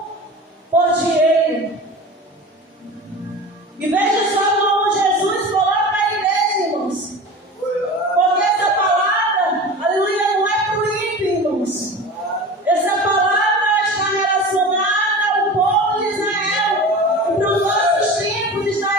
por dinheiro. E veja só como Jesus coloca a igreja, irmãos. Porque essa palavra, aleluia, não é para o ímpio, irmãos. Essa palavra está relacionada ao povo de Israel. E para os nossos tempos está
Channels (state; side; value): normal; both; correlation 0.33